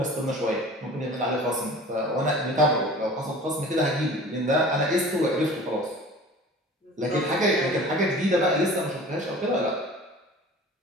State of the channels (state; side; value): normal; both; correlation 0.43